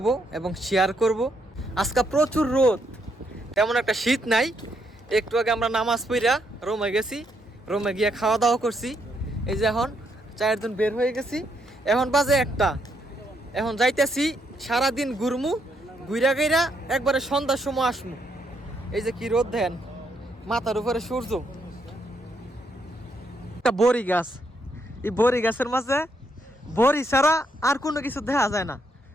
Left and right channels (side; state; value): both; normal; correlation 0.76